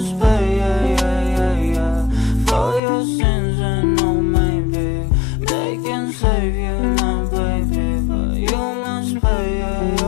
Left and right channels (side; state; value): right; drops out; at 2.8 s